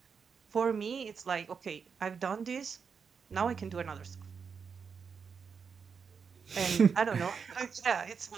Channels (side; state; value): left; quieter; 6.0 dB